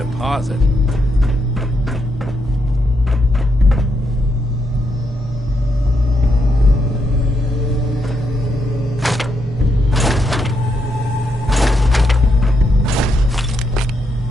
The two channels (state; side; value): normal; both; correlation 0.80